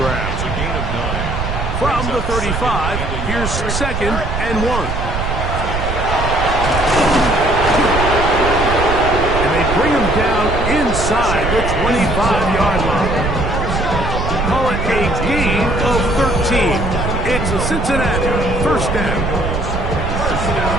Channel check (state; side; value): noise; right; rumble, 3 dB below the sound